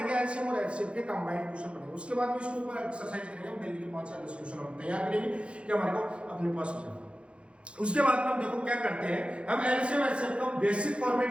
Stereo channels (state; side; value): late; left; 0.059 ms